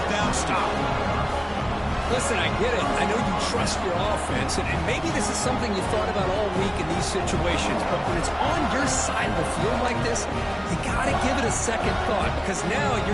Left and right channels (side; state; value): both; identical; correlation 1.00